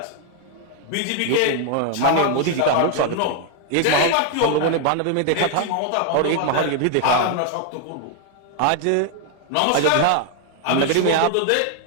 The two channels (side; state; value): both; different; correlation 0.00